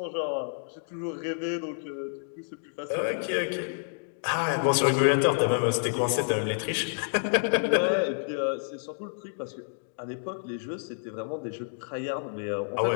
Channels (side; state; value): right; silent; digital silence